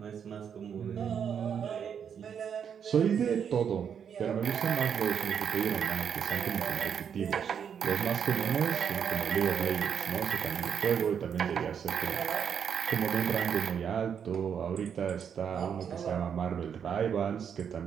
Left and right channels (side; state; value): left; quieter; 7.7 dB